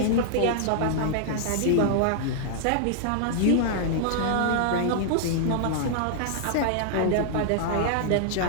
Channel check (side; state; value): both; different; correlation -0.01